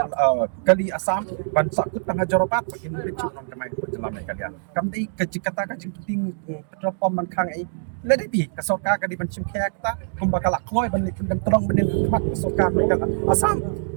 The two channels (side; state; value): left; silent; digital silence